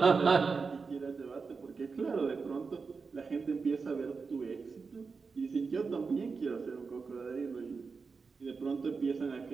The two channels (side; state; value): left; quieter; 4.8 dB